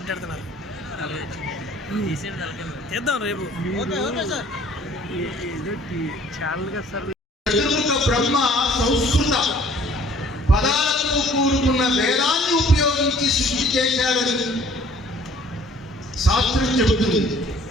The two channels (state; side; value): normal; both; correlation 0.55